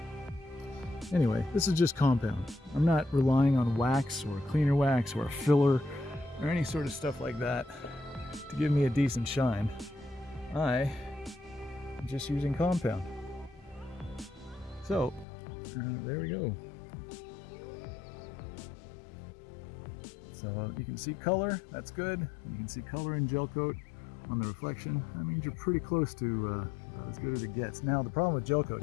Anyway, this is just compound. I'm not relying on wax or cleaner wax or a filler or any sort of stuff like that to give me a decent shine. I'm just using compound. So, there we go. So you can see color, that's good. You can see color in gel coat on the reflection. That means you're pretty close to as good as it gets. Now the problem with gel coat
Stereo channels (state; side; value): drops out; right; at 15.2 s